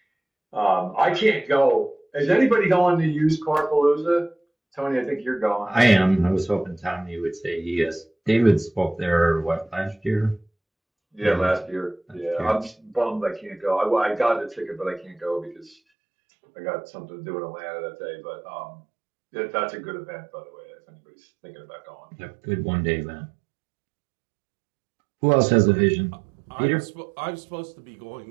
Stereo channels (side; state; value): left; drops out; at 15.8 s